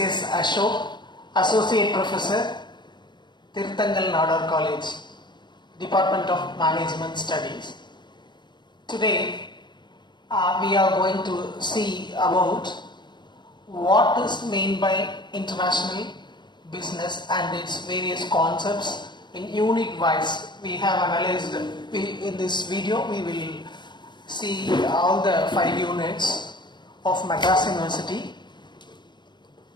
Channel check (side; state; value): right; late; 0.22 ms